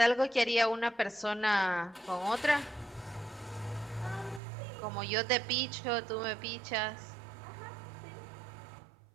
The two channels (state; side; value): drops out; left; at 4.4 s